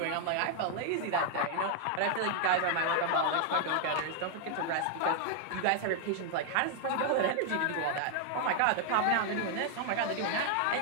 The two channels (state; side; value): different; both; correlation 0.00